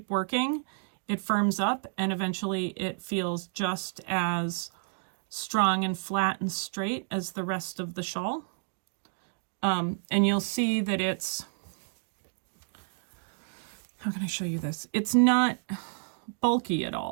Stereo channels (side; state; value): left; silent; digital silence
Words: working, it firms up and eventually it feels just as strong and flat and straight as the rest of the shawl. And you'll see that it's, how can I show you this? It's not bulky at